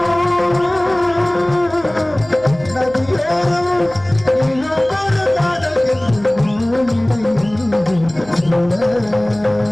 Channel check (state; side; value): noise; right; hum, 22 dB below the sound